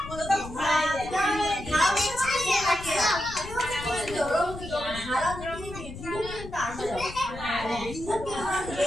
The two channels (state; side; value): noise; left; rumble, 12 dB below the sound